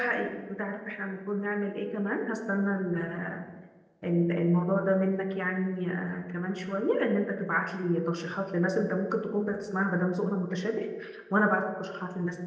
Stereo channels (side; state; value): both; identical; correlation 1.00